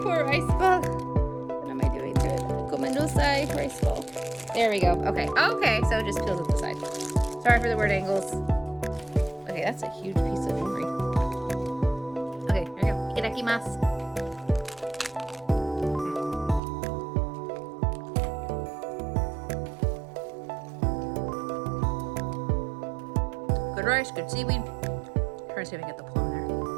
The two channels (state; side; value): drops out; left; at 16.6 s